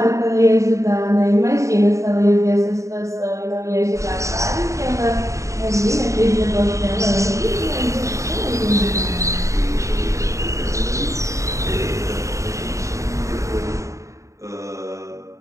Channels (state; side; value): late; left; 0.15 ms